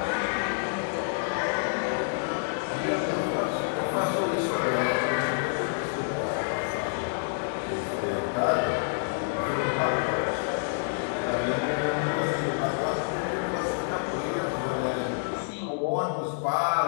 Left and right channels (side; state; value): right; silent; digital silence